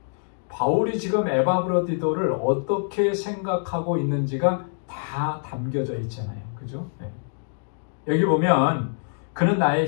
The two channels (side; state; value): right; silent; digital silence